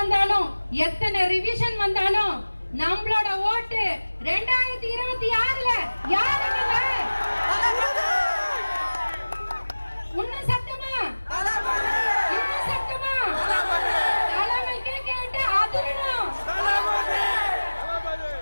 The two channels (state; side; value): inverted; both; correlation -1.00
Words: எத்தனை ரிவிஷன் வந்தாலும் நம்மளோட ஓட்டு 2026ல யாருங்க? உன்ன சத்தமா இன்னும் சத்தமா தலைமைக்கு கேட்டு அதிரணும்.